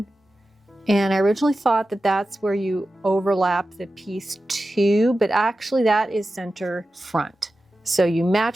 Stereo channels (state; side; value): normal; both; correlation 0.93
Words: And I originally thought that that's where you overlap the piece too, but actually that is center front. So you